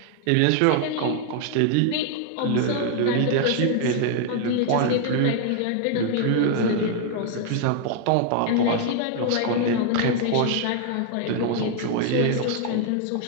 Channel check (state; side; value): different; both; correlation 0.00